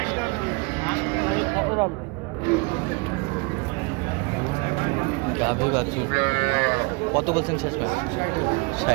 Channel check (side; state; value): left; quieter; 28.7 dB